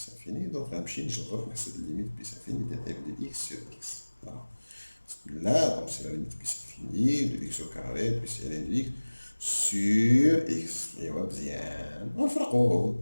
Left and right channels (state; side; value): inverted; both; correlation -1.00